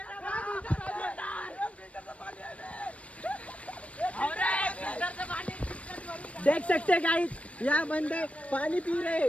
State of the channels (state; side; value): late; right; 0.064 ms